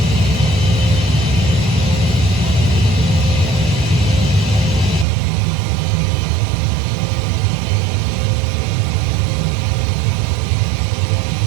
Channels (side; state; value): left; drops out; at 5.1 s